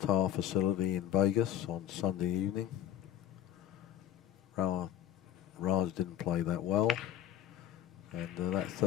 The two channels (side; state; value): right; quieter; 11.0 dB